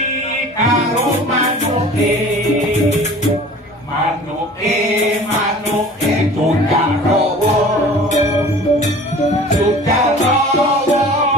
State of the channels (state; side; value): normal; both; correlation 0.44